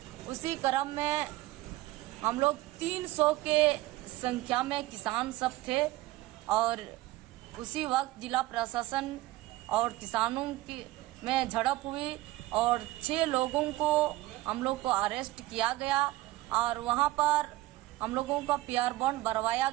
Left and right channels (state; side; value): quieter; left; 17.6 dB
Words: उसी क्रम में हम लोग 300 के संख्या में किसान सब थे और उसी वक्त जिला प्रशासन और किसानों की में झड़प हुई और 6 लोगों को हम लोग को अरेस्ट किया गया और वहां पर हम लोगों का पीआर बॉन्ड भरवाया